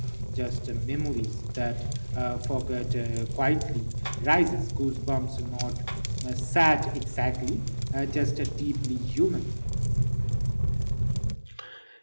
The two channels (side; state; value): both; inverted; correlation -1.00